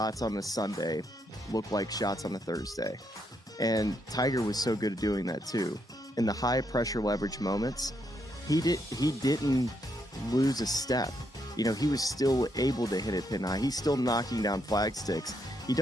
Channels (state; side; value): normal; both; correlation 0.77